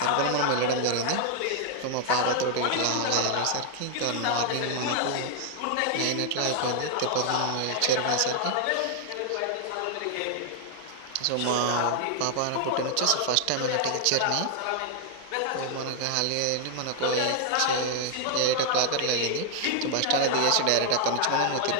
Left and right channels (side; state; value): both; different; correlation 0.00